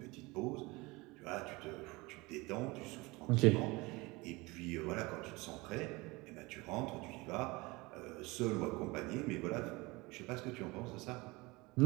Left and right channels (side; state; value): left; quieter; 23.6 dB